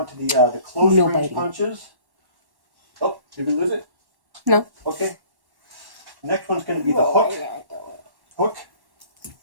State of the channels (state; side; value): late; left; 1.1 ms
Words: to the close range punches. Oh, did we lose it? No. Okay. Next one's going to be the hook. Hook.